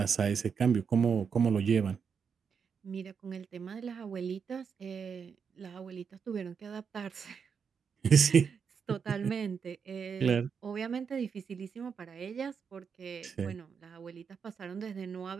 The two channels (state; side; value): quieter; left; 6.4 dB